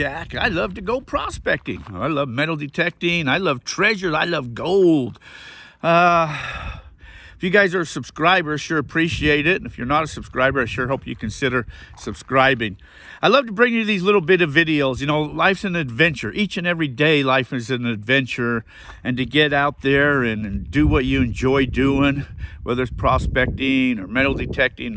I love to go prospecting. I love metal detecting. I love treasures. I love gold. If you guys are subscribers, sure appreciate it. And if you're not a subscriber, I sure hope you consider subscribing. I love to bring you these little bit of videos. You know, life's an adventure. Each and every day, life is an adventure. And to get out there and do what you enjoy doing, whether it's prospecting or metal detecting,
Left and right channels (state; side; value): identical; both; correlation 1.00